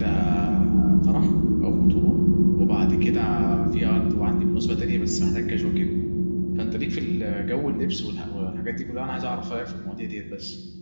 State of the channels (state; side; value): inverted; both; correlation -1.00